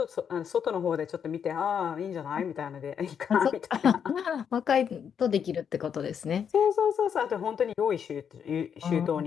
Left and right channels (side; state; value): right; quieter; 7.7 dB